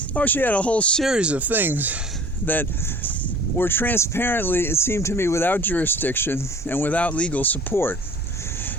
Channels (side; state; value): both; normal; correlation 0.48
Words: she had a whole series of things that were transparently, it seemed to me, without jurisdiction and without legal support.